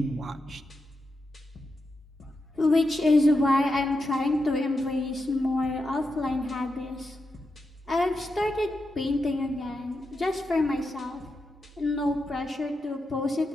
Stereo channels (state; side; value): normal; both; correlation 0.87